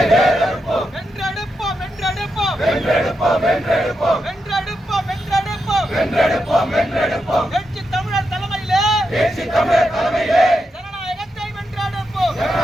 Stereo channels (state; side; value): normal; both; correlation 0.85